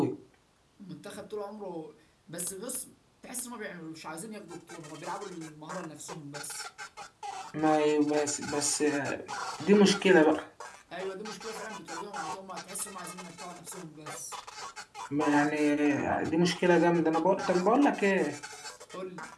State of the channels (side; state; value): both; identical; correlation 1.00